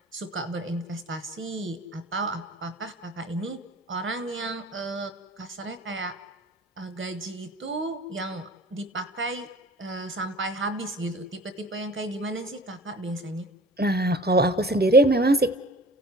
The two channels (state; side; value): normal; both; correlation 0.45